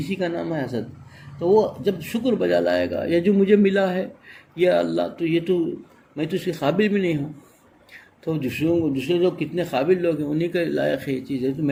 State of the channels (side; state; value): both; identical; correlation 1.00